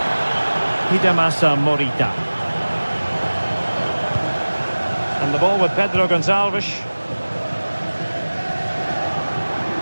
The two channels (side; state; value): both; inverted; correlation -1.00